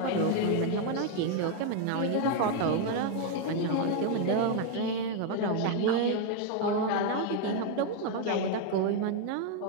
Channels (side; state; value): both; different; correlation 0.01